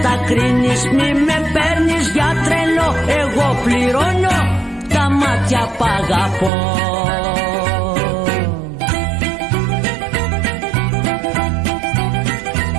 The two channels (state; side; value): drops out; left; at 6.5 s